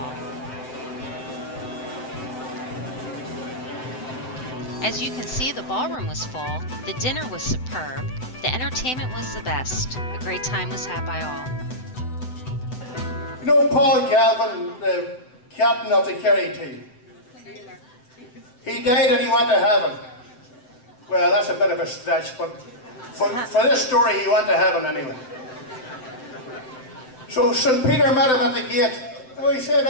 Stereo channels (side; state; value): right; late; 7.9 ms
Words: As you can see, the ballroom was full, the dinner was superb, the entertainment was the best. A great time was had by all. You know Paul Galvin, the captain of the Kerry team? He died and he went to heaven. Well, that's a bit of a stretch, but for this story, he went to heaven anyway. So St. Peter met him at the gate. Oh, he said,